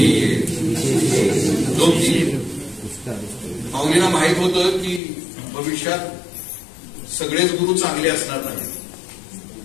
माऊलीला माहित होतं की भविष्यात सगळेच गुरु चांगले असणार नाही,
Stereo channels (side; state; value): right; drops out; at 5.0 s